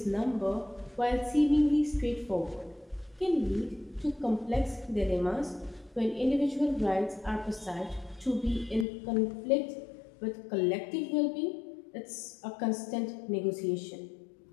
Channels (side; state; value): right; drops out; at 8.8 s